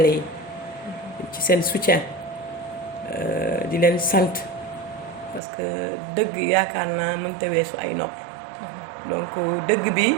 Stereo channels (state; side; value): drops out; left; at 5.4 s